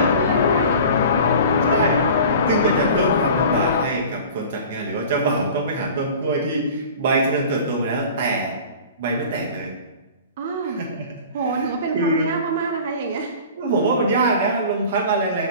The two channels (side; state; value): both; inverted; correlation -0.41